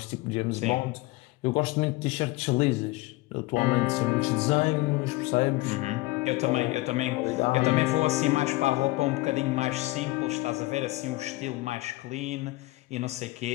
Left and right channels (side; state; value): right; quieter; 20.5 dB